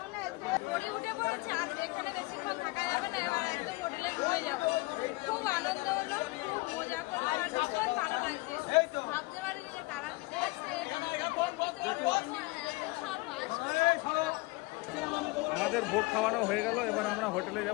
পড়ে উঠে পড়েছে, আর এখানে বেশিক্ষণ থাকা যাবে না, এবার একদম হোটেলে ঘুরে যাবো। খুব আনন্দ হলো, খুব মজা করলাম, আর ভীষণ ভালো লাগছে। ভাবতে পারিনি যে তারাপীঠে এসে আমাদের ভোগ খাওয়ানো হয়ে গেল, এবার আমরা হোটেলে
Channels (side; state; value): right; quieter; 23.7 dB